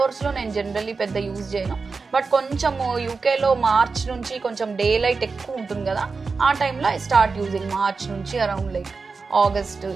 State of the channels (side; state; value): left; quieter; 4.5 dB